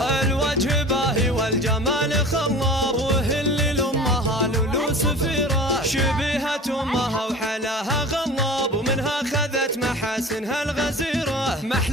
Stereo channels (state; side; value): normal; both; correlation 0.39